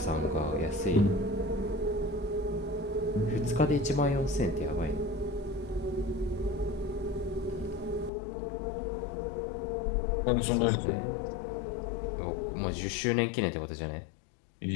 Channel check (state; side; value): drops out; right; at 8.1 s